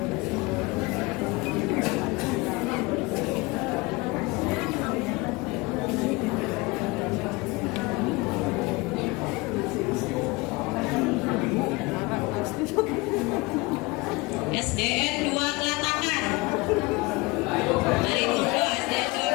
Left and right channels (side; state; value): right; quieter; 24.3 dB